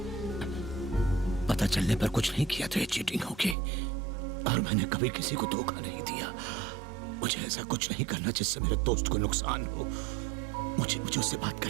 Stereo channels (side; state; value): left; drops out; at 3.6 s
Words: पता चलने पर कुछ नहीं किया तो ये चीटिंग होगी, और मैंने कभी किसी को धोखा नहीं दिया। मुझे ऐसा कुछ नहीं करना जिससे मेरे दोस्त को नुकसान हो। मुझे उससे बात